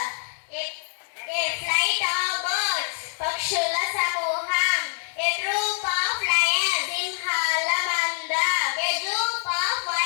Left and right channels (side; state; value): right; silent; digital silence